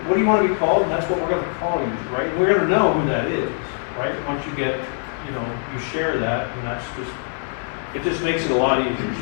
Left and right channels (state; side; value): silent; right; 63 dB below the other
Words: do you want to be called? And that's what we're going to call you, right? We're going to know who that is, right? Once you get, you share that, and it just makes it a lot easier.